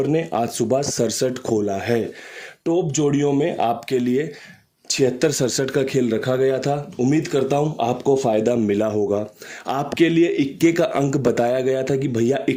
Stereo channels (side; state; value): both; identical; correlation 1.00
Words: ने आज सुबह 67 खोला है। टॉप जोड़ियों में आपके लिए 76-67 का खेल रखा गया था। उम्मीद करता हूं आपको फ़ायदा मिला होगा। आपके लिए इक्के का अंक बताया गया था कि भैया